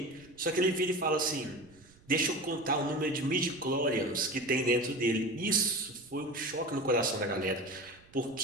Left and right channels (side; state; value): right; noise; rumble, 27 dB below the sound